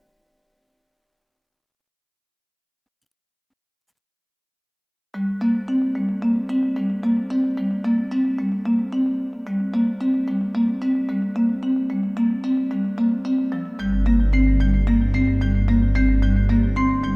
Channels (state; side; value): identical; both; correlation 1.00